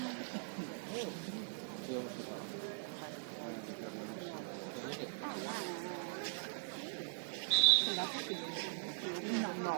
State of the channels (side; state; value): left; silent; digital silence